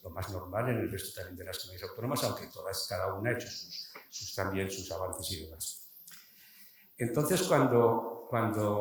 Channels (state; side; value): identical; both; correlation 1.00